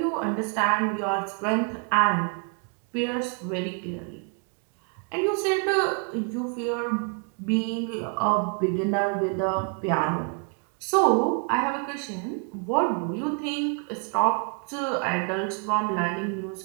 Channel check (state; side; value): quieter; left; 39.5 dB